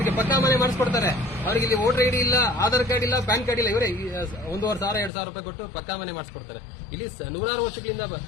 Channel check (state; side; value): drops out; right; at 5.1 s